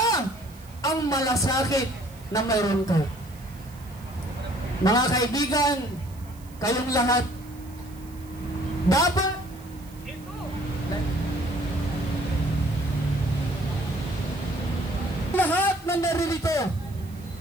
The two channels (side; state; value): right; noise; hiss, 24 dB below the sound